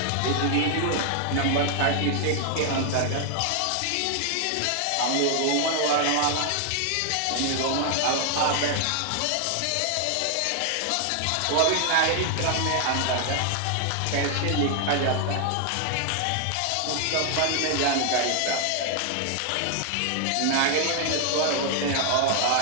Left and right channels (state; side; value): different; both; correlation 0.00